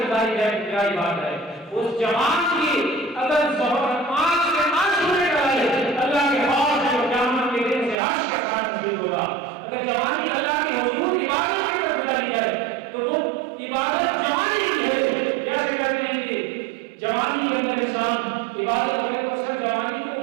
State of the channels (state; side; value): drops out; left; at 8.0 s